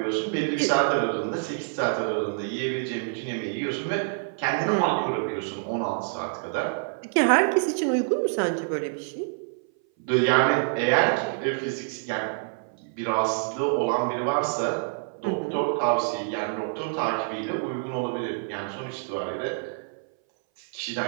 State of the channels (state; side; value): silent; left; 58 dB below the other